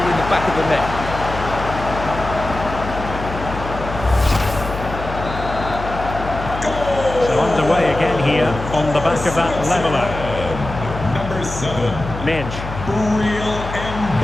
the back of the net. So underway again here on the back of that leveller. Number 7. Minge. Real and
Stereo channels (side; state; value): left; noise; hum, 9 dB below the sound